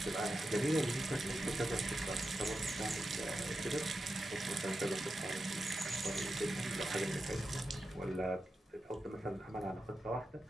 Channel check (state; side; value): normal; both; correlation 0.90